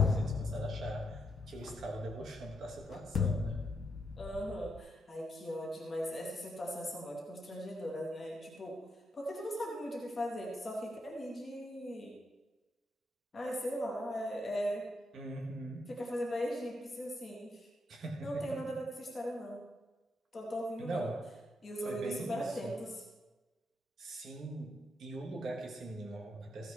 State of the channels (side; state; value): both; normal; correlation 0.80